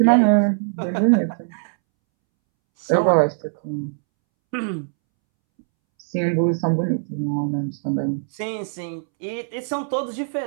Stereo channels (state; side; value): silent; left; 64 dB below the other